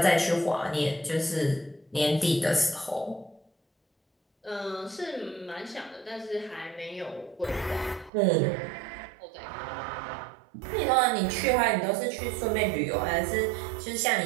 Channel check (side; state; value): left; drops out; at 8.1 s